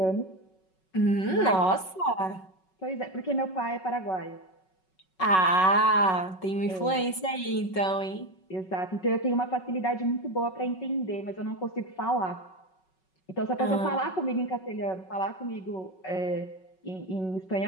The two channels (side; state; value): right; late; 5.4 ms